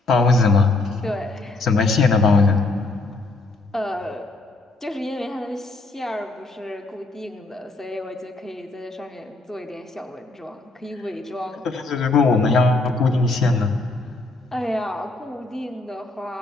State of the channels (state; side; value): quieter; right; 3.2 dB